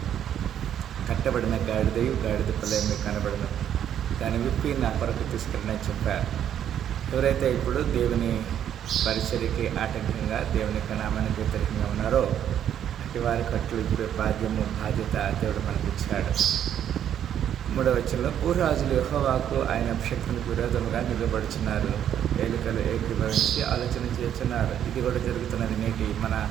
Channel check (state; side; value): quieter; left; 9.9 dB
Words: కట్టబడిన గాడిద పిల్ల మీకు కనబడను, దాన్ని విప్పి నా కొరకు తీసుకెళ్ళని చెప్పారు. ఎవరైతే ఇప్పుడు దేవుని పరిచర్యకి ఆటంకంగా, దేవుని నామానికి వ్యతిరేకంగా ఉన్నారో అట్టి వారి కట్లు ఇప్పుడు బాధ్యత దేవుడు మనకి ఇచ్చాడు. 3వ వచనంలో, భూరాజులు యెహోవాకు ఆయన అభిషేక్తునికి విరోధముగా నిలబడుచున్నారు, ఏలికలు ఏకీభవించి ఆలోచన చేస్తున్నారు. ఇది కూడా జరుగుతున్నది నేటి మన